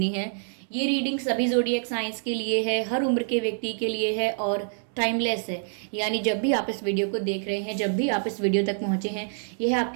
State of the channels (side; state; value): left; silent; 61 dB below the other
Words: है। ये रीडिंग सभी ज़ोडिएक साइंस के लिए है, हर उम्र के व्यक्ति के लिए है और टाइमलेस है। यानी जब भी आप इस वीडियो को देख रहे हैं, जब भी आप इस वीडियो तक पहुंचे हैं, यह